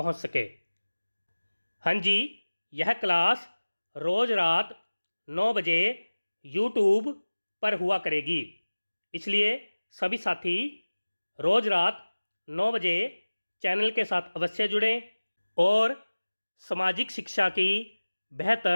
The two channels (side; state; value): both; inverted; correlation -1.00